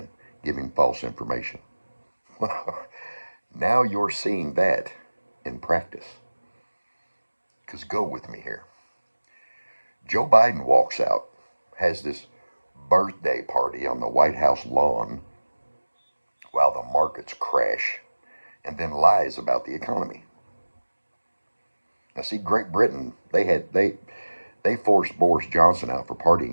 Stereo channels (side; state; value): both; inverted; correlation -1.00